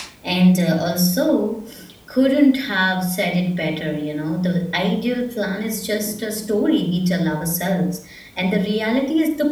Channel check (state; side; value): identical; both; correlation 1.00